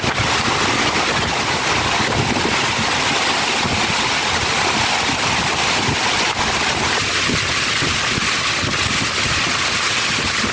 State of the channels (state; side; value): identical; both; correlation 1.00